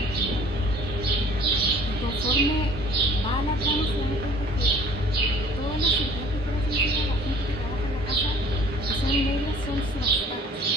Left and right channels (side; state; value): both; normal; correlation 0.52